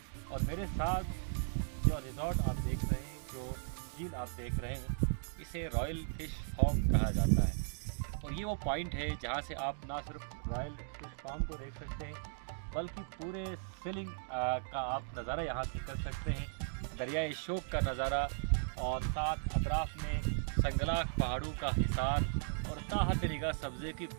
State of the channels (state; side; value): silent; left; digital silence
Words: और मेरे साथ जो रिजॉर्ट आप देख रहे हैं, जो झील आप देख रहे हैं, इसे रॉयल फिश फार्म कहा जाता है। और ये वो पॉइंट है जहाँ से आप ना सिर्फ रॉयल फिश फार्म को देख सकते हैं बल्कि पूरे सेलिंग का आप नज़ारा यहाँ से कर सकते हैं। दरियाए शोक का नज़ारा और साथ अतराफ़ में संगलाख पहाड़ों का हिसार और ताहत निगाह सब्ज़े की